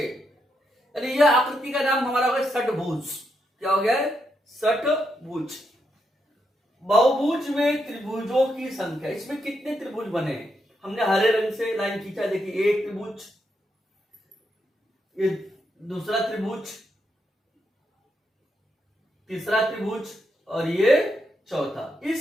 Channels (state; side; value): normal; both; correlation 0.81